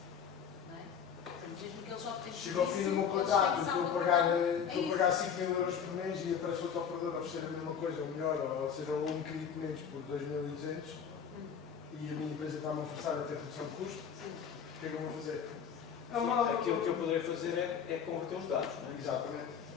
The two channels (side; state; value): right; quieter; 7.4 dB